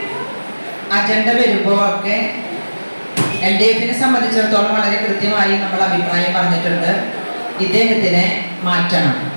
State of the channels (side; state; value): both; inverted; correlation -1.00